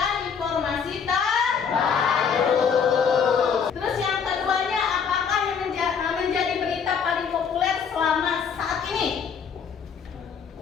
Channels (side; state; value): right; quieter; 6.6 dB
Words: informasi terbaru. Terus yang keduanya, apakah yang menjadi berita paling populer selama saat ini?